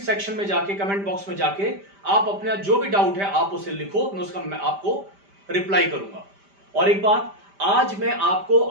में जाके, कमेंट बॉक्स में जाके आप अपना जो भी डाउट है आप उसे लिखो, मैं आपको रिप्लाई करूंगा। और एक बात, आज मैं आपको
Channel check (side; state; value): left; late; 5.1 ms